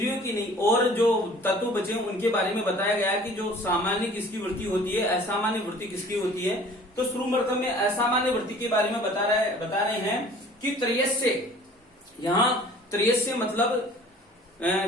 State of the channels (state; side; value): normal; both; correlation 0.49